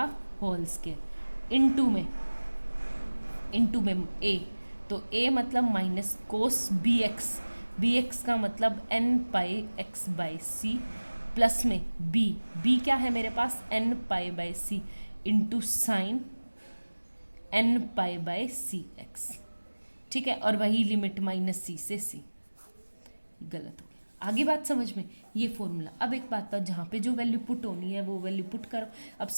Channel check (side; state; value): both; inverted; correlation -1.00